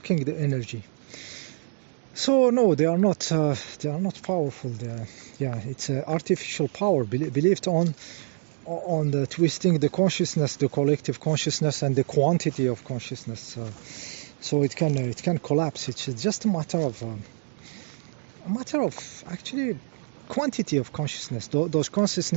the energy. So no, they are not powerful. It's artificial power believed on the twisting the consciousness, the collective consciousness, and the quantity of consciousness. So it can collapse. It's just a matter of actually quantity of consciousness. Those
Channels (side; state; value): left; silent; digital silence